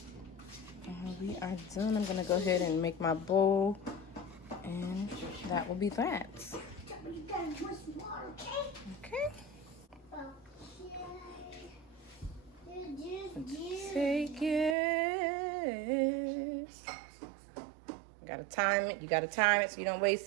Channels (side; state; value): left; drops out; at 14.8 s